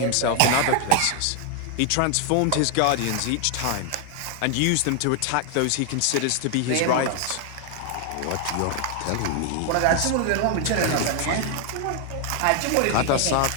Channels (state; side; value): different; both; correlation 0.00